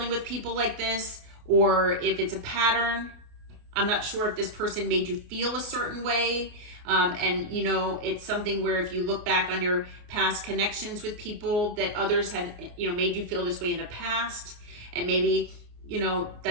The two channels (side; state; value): left; late; 29 ms